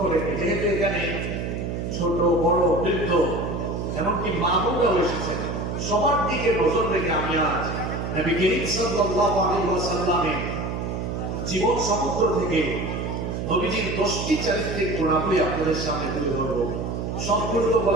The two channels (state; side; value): noise; right; hum, 3 dB below the sound